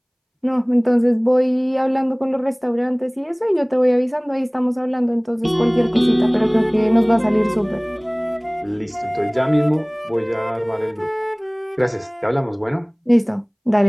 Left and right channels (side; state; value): both; identical; correlation 1.00